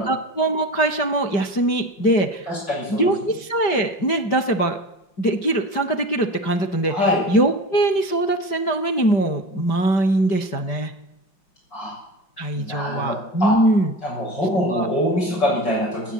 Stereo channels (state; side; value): late; right; 5.1 ms